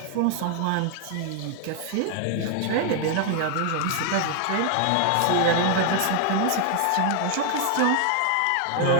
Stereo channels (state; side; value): different; both; correlation 0.00